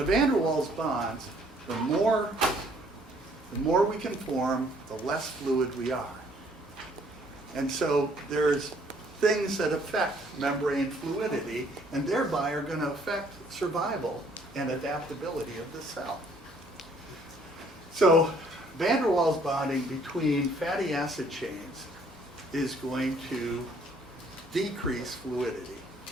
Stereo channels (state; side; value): normal; both; correlation 0.62